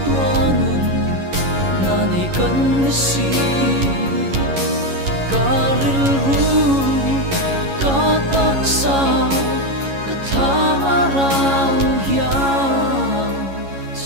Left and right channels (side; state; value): left; late; 11 ms